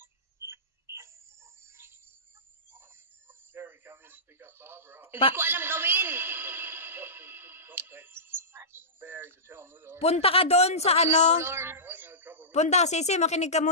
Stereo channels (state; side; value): normal; both; correlation -0.19